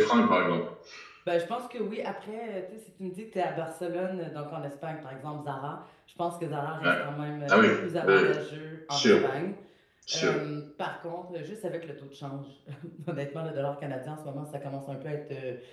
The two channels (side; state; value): both; identical; correlation 1.00